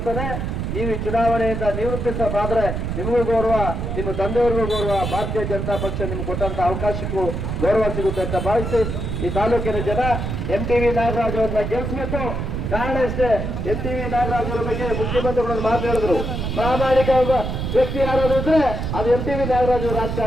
ನೀವು ಈ ಚುನಾವಣೆಯಿಂದ ನಿವೃತ್ತಿಸಬಾದ್ರೆ ನಿಮಗೂ ಗೌರವ, ನಿಮ್ಮ ತಂದೆಯವ್ರಿಗೂ ಗೌರವ, ಭಾರತೀಯ ಜನತಾ ಪಕ್ಷ ನಿಮ್ಗೆ ಕೊಟ್ಟಂತ ಅವಕಾಶಕ್ಕೂ ಗೌರವ ಸಿಗುತ್ತೆ ಅಂತ ಭಾವಿಸಿ ಈ ತಾಲೂಕಿನ ಜನ MTV ನಾಗರಾಜ್ ಅವ್ರನ್ನ ಗೆಲ್ಲಿಸಬೇಕು. ಕಾರಣ ಇಷ್ಟೇ, MTV ನಾಗರಾಜ್ ಅವರ ಬಗ್ಗೆ ಮುಖ್ಯಮಂತ್ರಿಗಳು ಮಾತಾಡಿದ್ರು, ಪ್ರಾಮಾಣಿಕ ವ್ಯಕ್ತಿ ಯಾರಾದ್ರೂ ಇದ್ರೆ ಅದು MTV ನಾಗರಾಜ್ ಅವರ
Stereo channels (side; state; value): right; noise; rumble, 3 dB below the sound